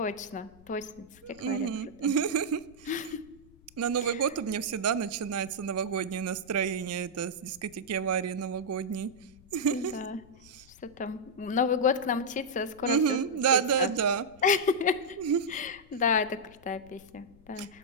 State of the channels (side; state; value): left; noise; rumble, 25 dB below the sound